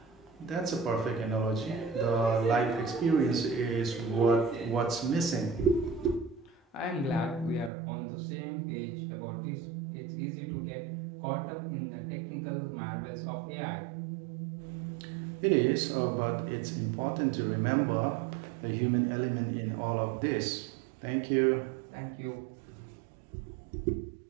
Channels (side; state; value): left; drops out; at 7.7 s